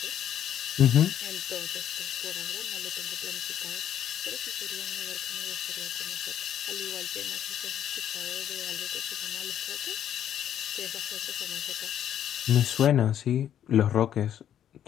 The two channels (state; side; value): quieter; right; 10.2 dB